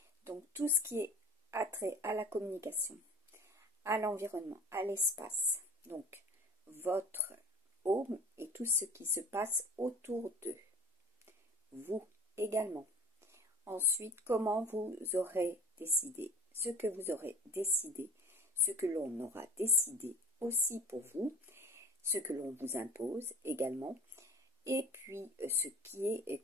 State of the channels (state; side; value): normal; both; correlation 0.41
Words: Donc tout ce qui est attrait à la communication, à l'environnement, à l'espace, donc votre home et tout ce qui se passe autour d'eux. Vous également. Ensuite, comment vous aurez décidé, ce que vous aurez décidé, ce que l'on aura décidé aussi pour vous, ce que l'on vous impose également, et puis ce qui est